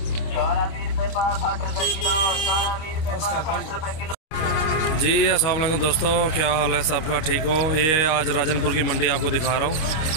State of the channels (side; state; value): right; late; 26 ms